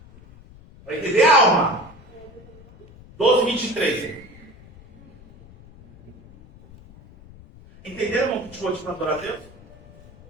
Para entender a alma. 12:23. Entenderam, irmão, que te vou te adorar a Deus?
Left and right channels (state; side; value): noise; left; rumble, 22 dB below the sound